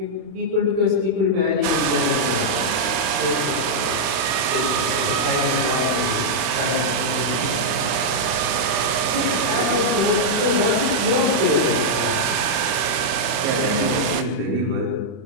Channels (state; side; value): late; left; 31 ms